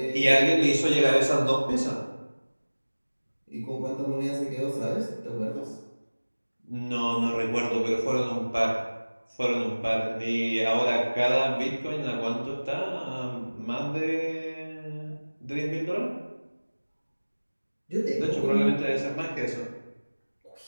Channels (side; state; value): both; inverted; correlation -1.00